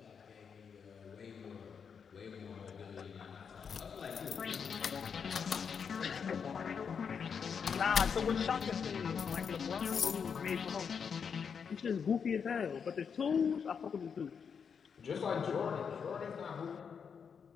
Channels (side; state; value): right; quieter; 6.6 dB